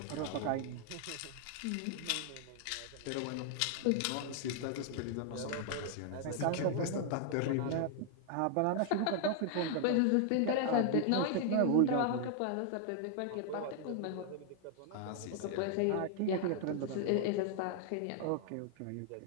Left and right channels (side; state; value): both; different; correlation 0.00